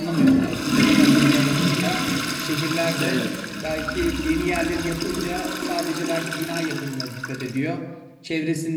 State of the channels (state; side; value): identical; both; correlation 1.00